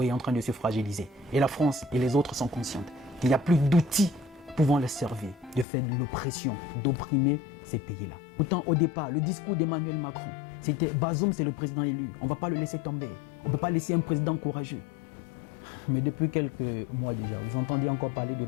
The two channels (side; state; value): right; drops out; at 5.7 s